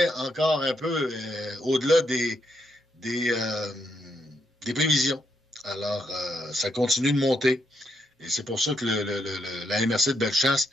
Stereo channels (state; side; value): normal; both; correlation 0.78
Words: encore un peu au-delà des prévisions. Alors, ça continue de monter. Et c'est pour ça que la MRC de Bellechasse